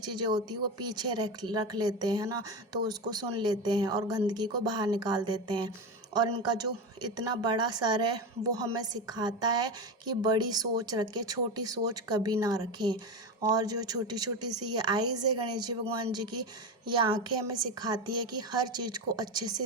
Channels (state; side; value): normal; both; correlation 0.19